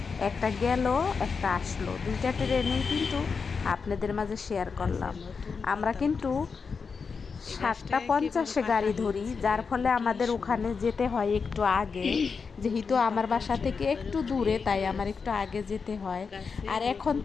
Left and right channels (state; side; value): quieter; right; 5.3 dB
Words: একটা গেল একটা আসলো, দুইটা ট্রেনেই কিন্তু আপনাদের মাঝে শেয়ার করলাম। আমরা কিন্তু 7টা 50-এ গাড়ি ধরি, যার ফলে আমাদের ওখানে যেতে হয় একটু আগে, যেহেতু আমার বাসা থেকে একটু দূরে, তাই আমার একটু আগে যেতে হয়। আর এখন